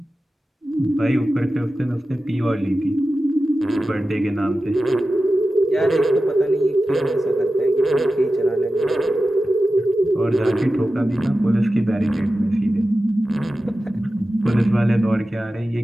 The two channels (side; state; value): both; normal; correlation 0.94